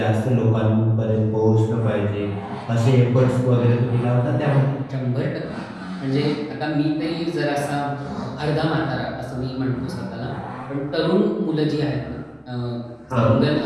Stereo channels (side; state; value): both; identical; correlation 1.00